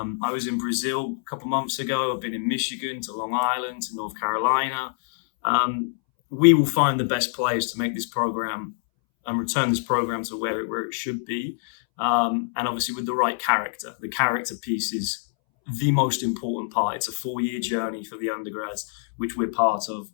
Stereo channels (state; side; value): silent; right; 62 dB below the other